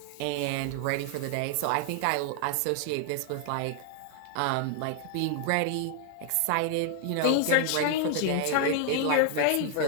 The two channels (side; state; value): both; different; correlation 0.00